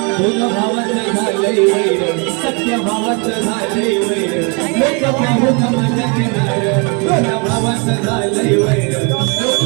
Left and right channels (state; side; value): quieter; left; 33.0 dB